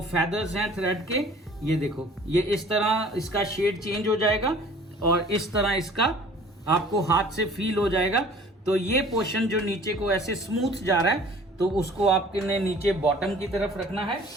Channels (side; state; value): both; normal; correlation 0.49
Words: फैदर्स हैं थ्रेड के, ये देखो, ये इस तरह इसका शेड चेंज हो जाएगा और इस तरह इसका आपको हाथ से फील हो जाएगा। तो ये पोर्शन जो नीचे को ऐसे स्मूथ जा रहा है तो उसको आपने नीचे बॉटम की तरफ रखना है।